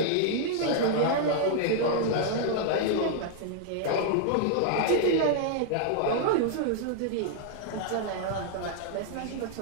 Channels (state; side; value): different; both; correlation -0.01